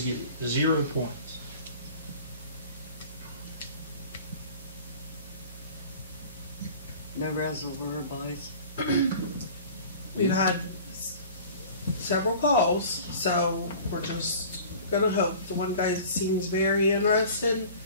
get 0 points. No reservoir buys. We've had several calls, so we're just going to hope. The one guy seems very interested.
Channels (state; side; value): inverted; both; correlation -0.43